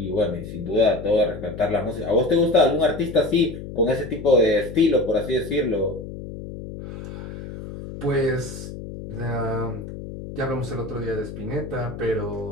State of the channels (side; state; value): left; noise; hum, 10 dB below the sound